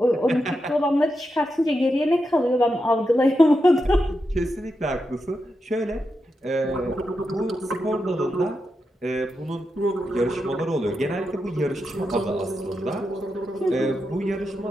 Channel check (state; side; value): normal; both; correlation 0.87